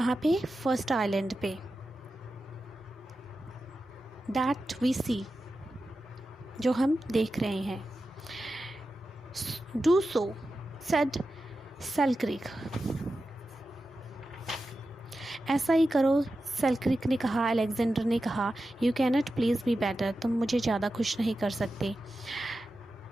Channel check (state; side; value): normal; both; correlation 0.92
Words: पे? फर्स्ट आइलैंड पे। दैट वी सी, जो हम देख रहे हैं। डू सो सेड सेल्क्रिक, ऐसा ही करो, सेल्क्रिक ने कहा, अलेक्जेंडर ने कहा। You cannot please be better, तुम मुझे ज़्यादा खुश नहीं कर सकते।